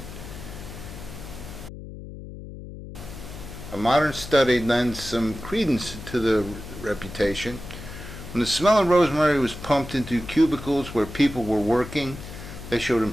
A modern study lends some credence to the reputation. When the smell of rosemary was pumped into cubicles where people were working, they showed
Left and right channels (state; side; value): noise; left; hum, 12 dB below the sound